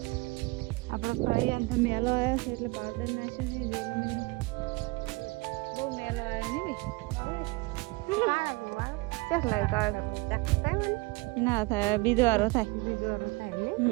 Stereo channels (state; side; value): quieter; left; 24.4 dB